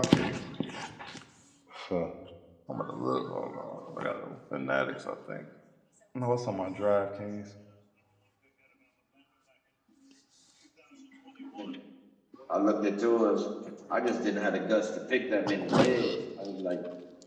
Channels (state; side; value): identical; both; correlation 1.00